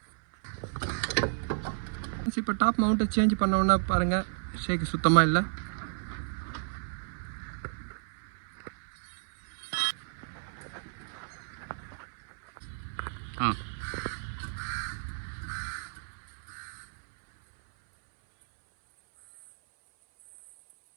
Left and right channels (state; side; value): silent; left; 56 dB below the other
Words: இப்போ டாப் மவுண்ட்டை சேஞ்ச் பண்ணோன்னா பாருங்கள், ஷேக் சுத்தமாக இல்லை. ஆ.